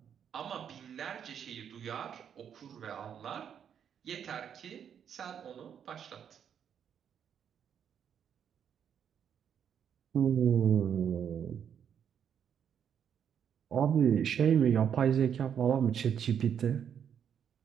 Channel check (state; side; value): quieter; left; 8.3 dB